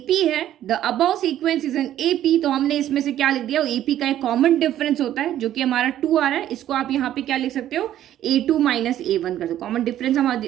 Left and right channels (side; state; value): left; quieter; 12.0 dB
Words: है, the above sequence is an AP, तो हमने इसमें से क्या लिख दिया? एपी का एक कॉमन डिफरेंस होता है जो कि हमारा 2 आ रहा है। इसको आप यहाँ पे क्या लिख सकते हो? a2 माइनस a1 कर दो। कॉमन डिफरेंस हम